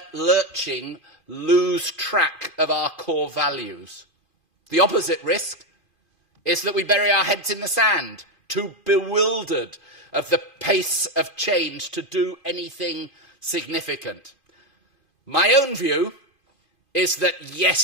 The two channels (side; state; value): right; late; 2.5 ms